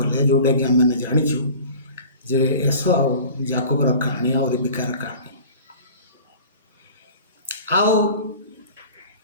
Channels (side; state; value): both; inverted; correlation -0.42